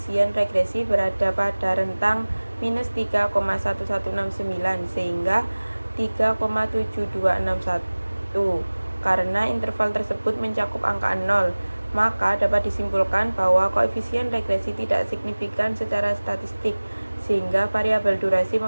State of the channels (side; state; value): both; inverted; correlation -1.00